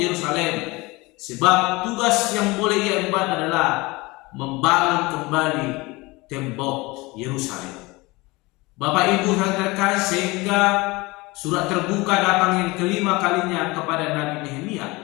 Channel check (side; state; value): right; quieter; 23.1 dB